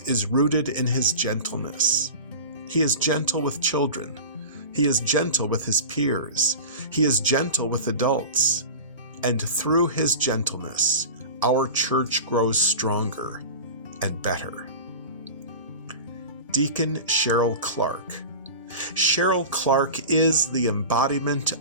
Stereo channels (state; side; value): inverted; both; correlation -0.31